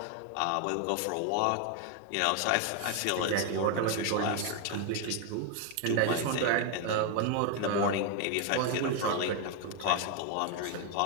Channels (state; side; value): different; both; correlation 0.01